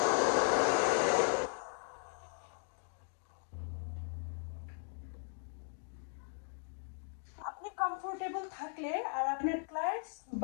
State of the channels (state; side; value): silent; right; 53 dB below the other